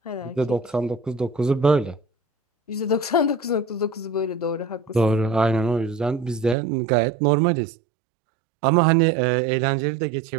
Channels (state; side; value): drops out; left; at 6.6 s